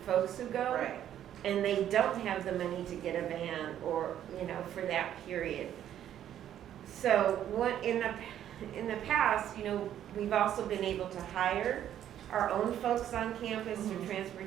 folks who go. Right. And they don't have the money to get a van or, for that period. So what in the past, we've also been able to hire our own folks on campus through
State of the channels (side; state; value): left; quieter; 10.9 dB